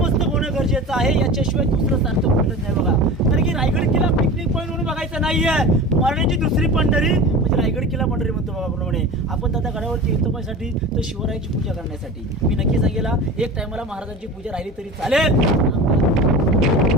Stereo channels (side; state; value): both; normal; correlation 0.33